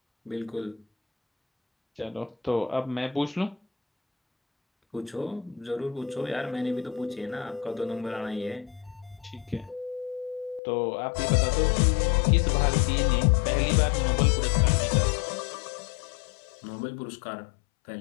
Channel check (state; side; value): drops out; right; at 10.6 s